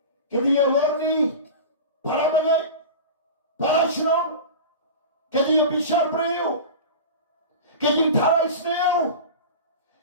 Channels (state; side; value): inverted; both; correlation -0.30